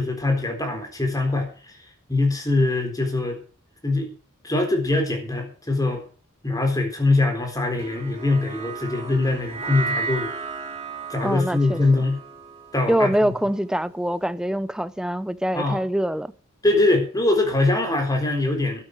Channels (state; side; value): normal; both; correlation 0.77